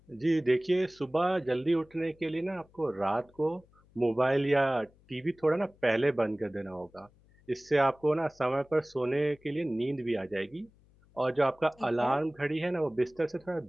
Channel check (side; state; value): left; noise; hum, 30 dB below the sound